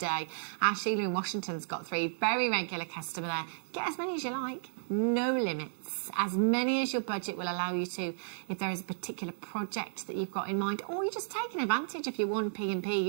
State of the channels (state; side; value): silent; left; digital silence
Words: Sheila in Washington's got 3. Very regular customer there. Get as many as you like. No limits. As many as your budget will allow you to. If there is a particular project that you've got in mind, or you're just taking advantage of your 1P&P,